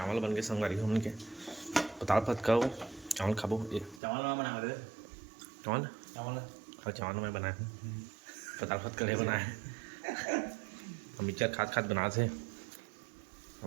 बन गए संगवारी हम के पताल फत का चावल खाबो ये चावल में बना दे चावल चावल और चावल में बनाए पताल फत का बनाए हम मिक्सर खाद खाद बना थे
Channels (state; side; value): drops out; left; at 4.0 s